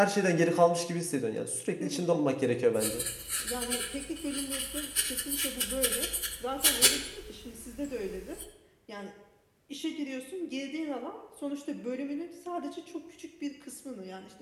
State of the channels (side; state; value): both; identical; correlation 1.00